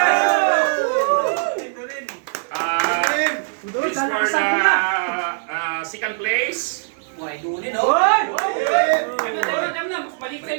This is for the second place. Why, Dunin, Hoy! Alam na, balik sa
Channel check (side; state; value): left; silent; digital silence